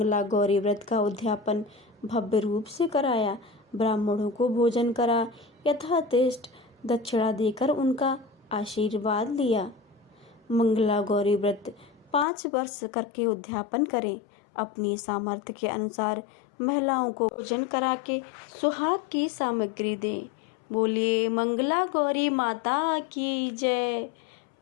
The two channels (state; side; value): drops out; right; at 12.2 s